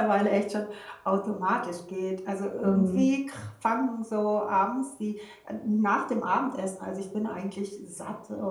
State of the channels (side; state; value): both; identical; correlation 1.00